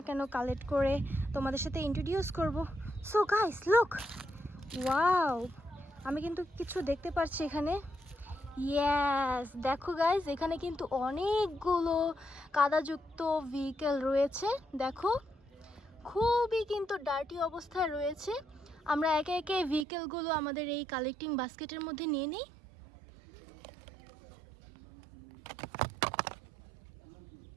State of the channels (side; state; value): left; drops out; at 19.9 s